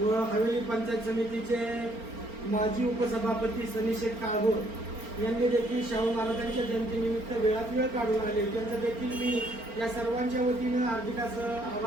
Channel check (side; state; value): left; late; 4.4 ms